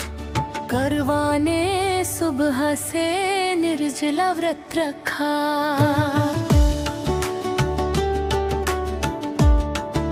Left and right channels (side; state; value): both; identical; correlation 1.00